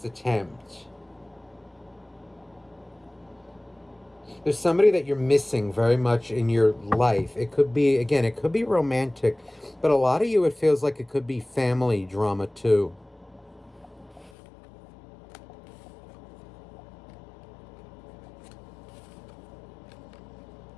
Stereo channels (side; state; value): right; drops out; at 14.3 s